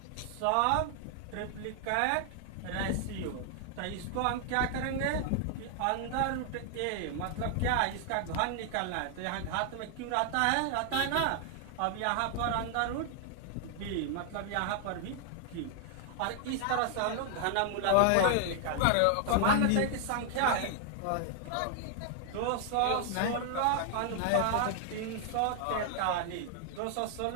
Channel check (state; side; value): different; both; correlation 0.00